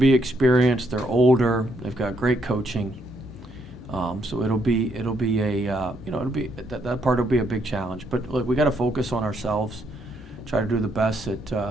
experienced. They're older. They've got great coaching. So it'll be that part will be a big challenge. But look, we got to focus on ourselves, try to do the best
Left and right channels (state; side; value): normal; both; correlation 0.74